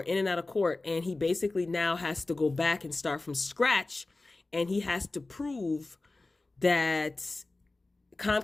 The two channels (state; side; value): quieter; right; 3.2 dB